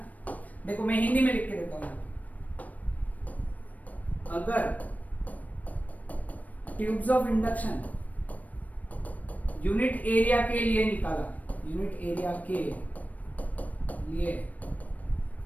देखो मैं हिंदी में लिख के देता हूं। अगर tubes of induction unit area के लिए निकाला, यूनिट एरिया के लिए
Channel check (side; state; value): right; late; 0.073 ms